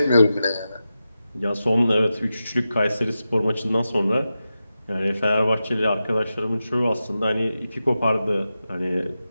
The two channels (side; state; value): both; inverted; correlation -0.92